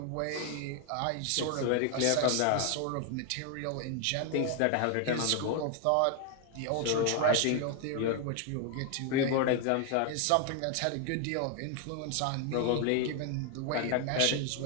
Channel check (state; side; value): different; both; correlation 0.01